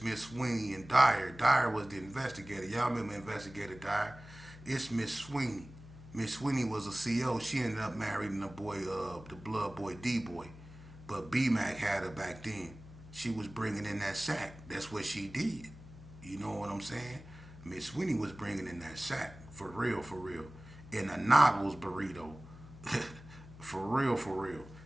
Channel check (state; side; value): noise; left; hum, 17 dB below the sound